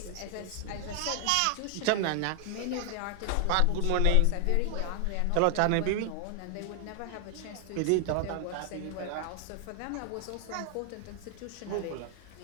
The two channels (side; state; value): both; different; correlation 0.00